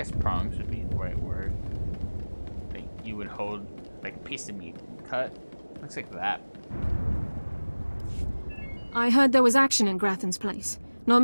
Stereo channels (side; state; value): both; inverted; correlation -1.00